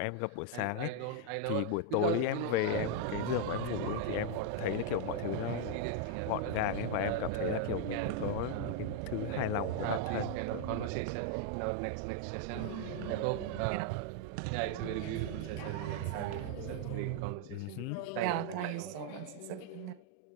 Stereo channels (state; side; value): different; both; correlation 0.00